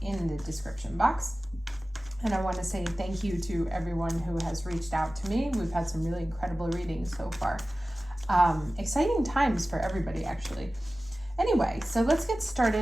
in the description box. And I want to say thank you to everyone who has reached out to me. We've had some really incredible readings so far. Exciting times for everybody, actually. Anyway, so let's get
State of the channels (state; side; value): normal; both; correlation 0.96